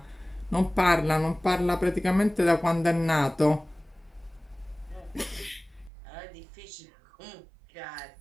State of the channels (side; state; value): left; drops out; at 5.9 s